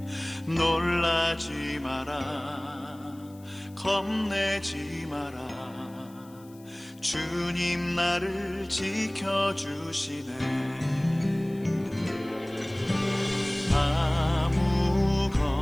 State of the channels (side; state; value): left; noise; hiss, 26 dB below the sound